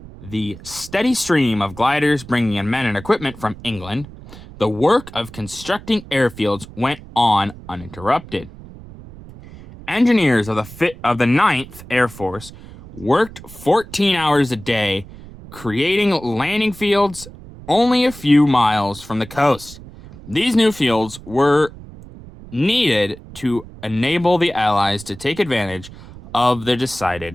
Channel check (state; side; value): noise; right; rumble, 17 dB below the sound